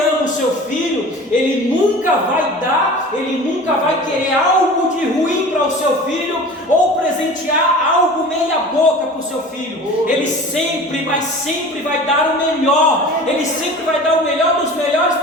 o seu filho, ele nunca vai querer algo de ruim para o seu filho, ou presentear algo meia boca para o seu filho. Ele sempre vai dar o melhor, ele sempre vai dar o melhor dos melhores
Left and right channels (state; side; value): normal; both; correlation 0.39